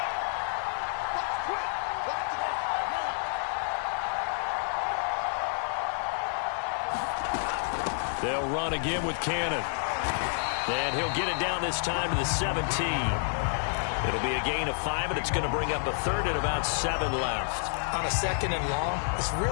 They'll run again with Cannon. And he'll get it down this time to the 17. It'll be a gain of 5, and it's going to bring up a 3rd and about 7 left. On a 2nd and long, it's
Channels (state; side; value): silent; right; digital silence